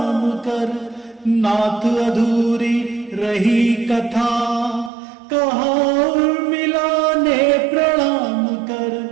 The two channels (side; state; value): left; drops out; at 4.9 s